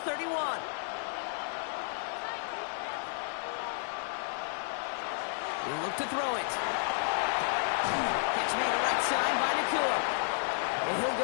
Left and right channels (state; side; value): silent; right; digital silence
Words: 31. He'll look to throw it. Catch made right side by Nacua. And he'll